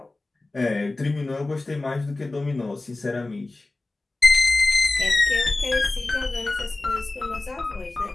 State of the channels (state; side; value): quieter; right; 3.1 dB